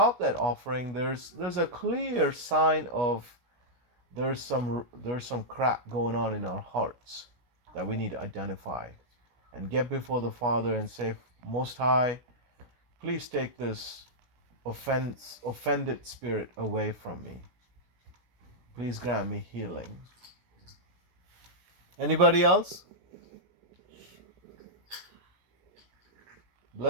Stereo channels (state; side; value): late; left; 16 ms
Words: that offering, there's a clear sign of there's some crap going on in our hearts that we need to identify and get before the Father and say, Most High, please take this offended spirit away from me. Please grant me healing. Anybody else?